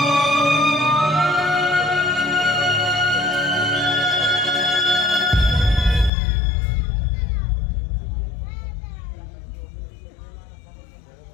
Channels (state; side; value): drops out; right; at 6.1 s